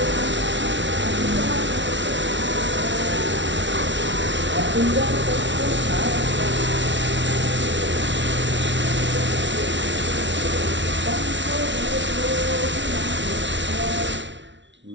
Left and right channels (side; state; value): left; late; 0.53 ms